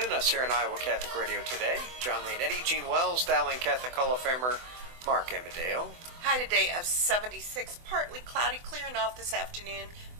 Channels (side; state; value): left; late; 24 ms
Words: us here on Iowa Catholic Radio Today. John Leonetti, Gene Wells, Dowling Catholic Hall of Famer Mark Amadeo. High today of 76, partly cloudy, clearing off this afternoon.